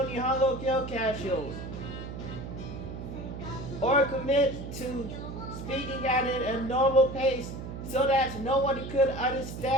Nihongo Kyokashos, or commit to speaking at it at a normal pace so that no one could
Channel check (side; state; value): right; noise; hum, 8 dB below the sound